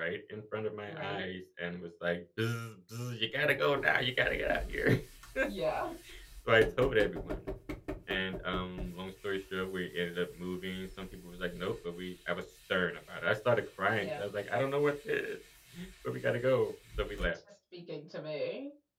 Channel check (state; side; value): identical; both; correlation 1.00